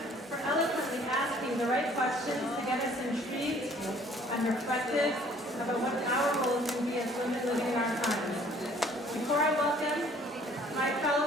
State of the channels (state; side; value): normal; both; correlation 0.57